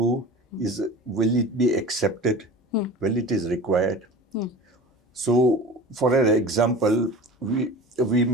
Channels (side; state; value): both; normal; correlation 0.35